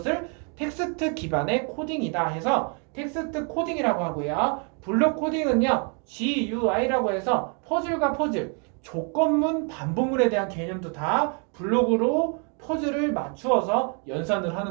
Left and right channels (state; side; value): quieter; left; 38.3 dB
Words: 텍스트 기반의 코딩이다 해서 텍스트 코딩이라고 하고요. 블록 코딩은요. GUI라고 해서 퍼즐과 퍼즐, 조건문, 반복문에 대한 개념도 다 블록으로 퍼즐을 맞추어서 연산을